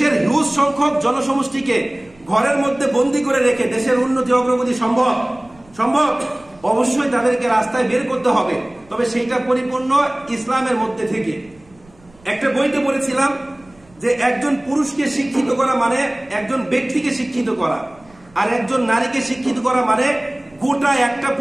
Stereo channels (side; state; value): right; noise; rumble, 28 dB below the sound